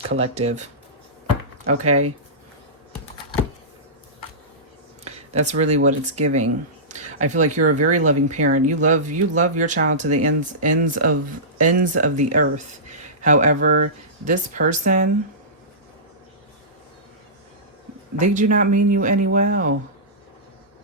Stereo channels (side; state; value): both; normal; correlation -0.19